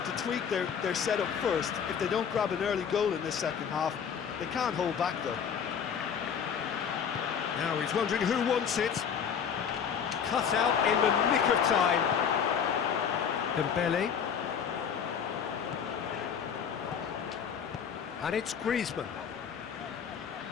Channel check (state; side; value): quieter; right; 7.4 dB